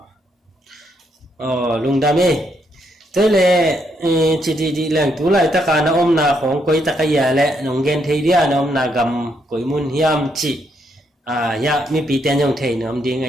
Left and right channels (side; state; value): both; normal; correlation 0.76